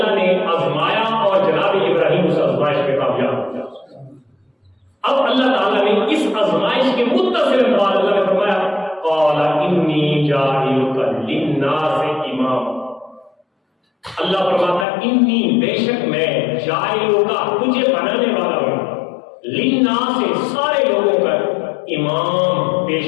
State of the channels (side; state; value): right; drops out; at 14.9 s